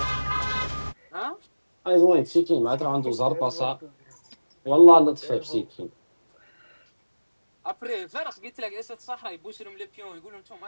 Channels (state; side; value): inverted; both; correlation -1.00